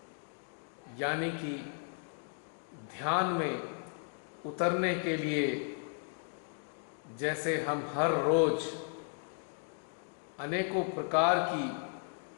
यानी कि ध्यान में उतरने के लिए जैसे हम हर रोज अनेकों प्रकार की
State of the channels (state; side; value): silent; right; 54 dB below the other